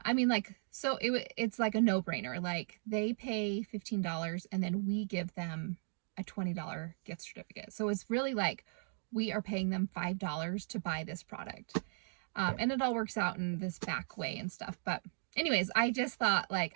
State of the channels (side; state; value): left; silent; digital silence